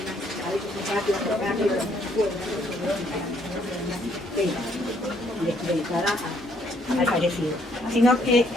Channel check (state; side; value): normal; both; correlation 0.67